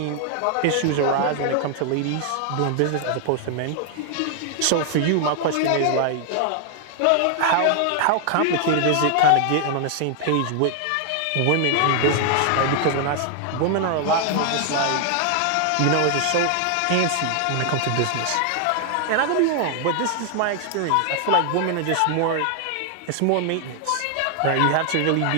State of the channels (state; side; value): different; both; correlation 0.00